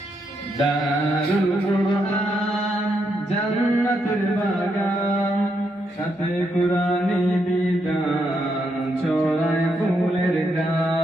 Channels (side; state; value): both; normal; correlation 0.79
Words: দারুল কুরআন জান্নাতুল বাগান, সাথে কুরআনি বিধান, ছড়ায় ফুলের